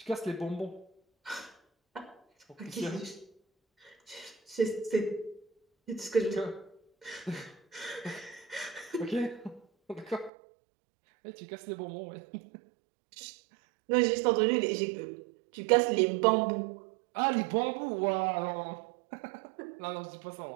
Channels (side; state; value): left; drops out; at 10.3 s